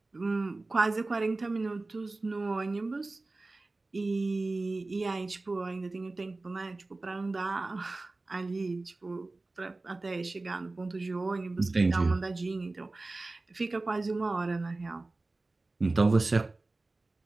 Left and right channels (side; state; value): left; quieter; 3.2 dB